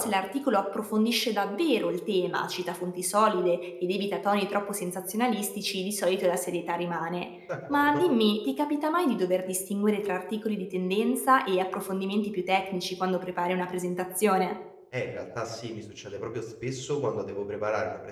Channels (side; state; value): both; identical; correlation 1.00